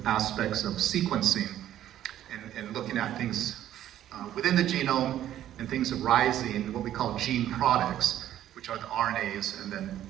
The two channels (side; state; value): left; quieter; 12.0 dB